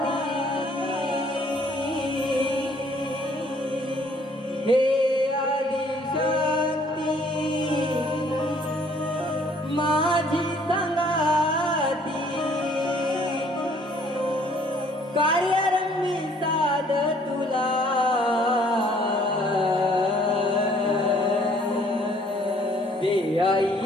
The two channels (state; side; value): normal; both; correlation 0.60